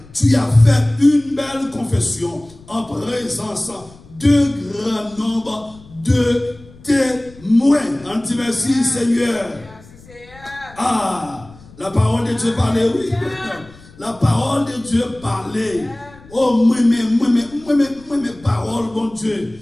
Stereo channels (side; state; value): left; noise; rumble, 23 dB below the sound